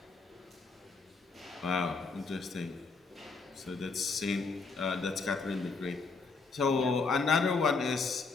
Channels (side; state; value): right; quieter; 4.3 dB